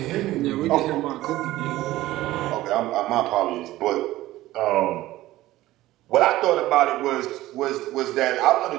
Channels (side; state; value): left; quieter; 16.3 dB